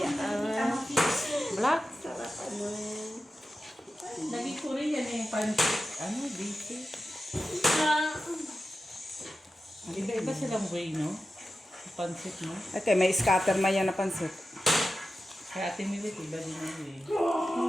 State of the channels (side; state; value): both; normal; correlation 0.93